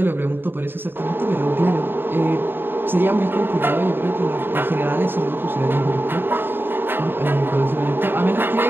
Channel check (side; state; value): left; late; 0.098 ms